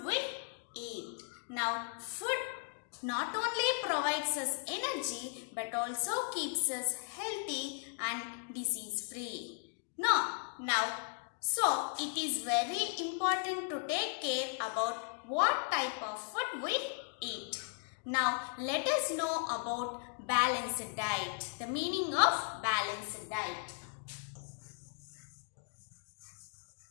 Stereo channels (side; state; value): right; silent; 53 dB below the other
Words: we eat. Now food not only provides us energy but also keeps us healthy and disease free. Now, so it is very important to take care about what type of food we eat. Now let us know about balanced diet. The meaning of balanced diet.